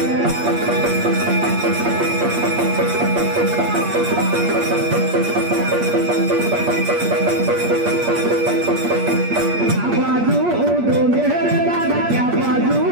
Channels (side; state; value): left; late; 8.5 ms